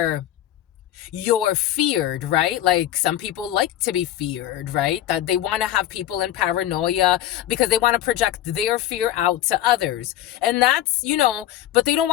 you're feared, right? Like, some people like to be feared, right? That they want to have people in paranoia because they want to project their fear out to others. And that's, but they don't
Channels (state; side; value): quieter; right; 13.0 dB